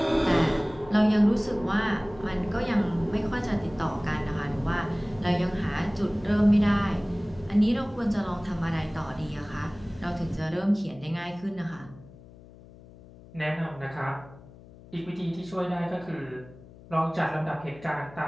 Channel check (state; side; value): noise; left; hum, 21 dB below the sound